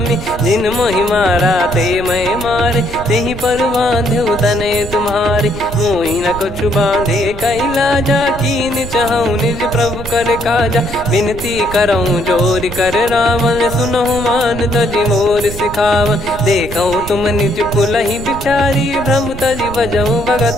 जिन मोहि मारा ते मैं मारे। तेहि पर बांध्यो तने तुम्हारे, मोहि न कुछ बांधे कैला जा। कीन चाहूं निज प्रभु कर काजा, विनती करऊं जोर कर रावण। सुनहु मान तजि मोर सिखावन, देखऊं तुम निज कुलहि बिचारी। भ्रम तजि भजऊं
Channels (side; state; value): right; noise; rumble, 11 dB below the sound